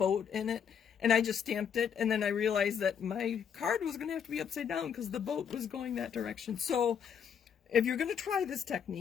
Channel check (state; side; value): quieter; right; 7.7 dB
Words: in it, and I just stamped it, and then I realized that my card was going to have to be upside down because the boat was going that direction. So if you're going to try this